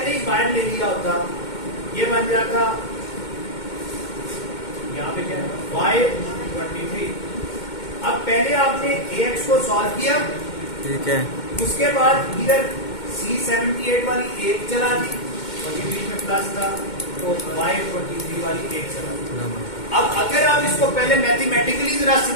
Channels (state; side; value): late; right; 2.2 ms